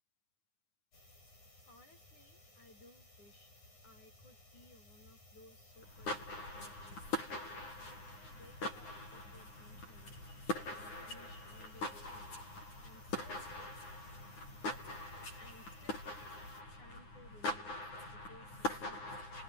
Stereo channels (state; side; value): late; right; 9.7 ms